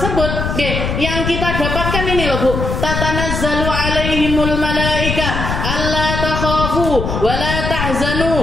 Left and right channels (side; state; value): left; noise; rumble, 3 dB below the sound